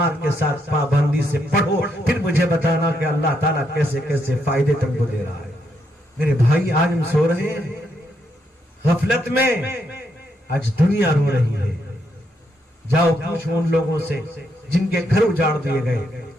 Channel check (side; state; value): both; normal; correlation 0.78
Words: کے ساتھ پابندی سے پڑھو. پھر مجھے بتانا کہ اللہ تعالیٰ کیسے کیسے فائدے تم کو دے رہا ہے. میرے بھائی آج ہم سو رہے ہیں، غفلت میں آج دنیا رو رہی ہے. جاؤ پوچھو ان لوگوں سے جن کے گھر اجاڑ دیے گئے،